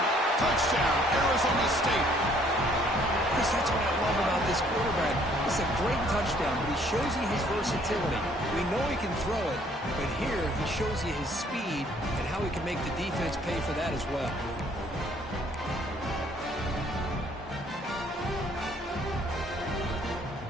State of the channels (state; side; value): normal; both; correlation 0.62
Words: Touchdown, Arizona State. Chris, that's what I love about this quarterback. It's a great touchdown, but he shows you his versatility. We know he can throw it, but here he shows you his speed and how he can make the defense pay for that as well.